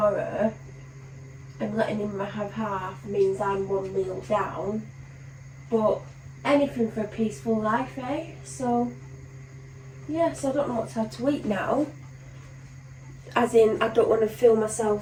and letting him have half means I'm 1 meal down. But anything for a peaceful life, eh? So, yeah, so I don't know what to have to eat now. As in, I don't want to fill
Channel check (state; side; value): identical; both; correlation 1.00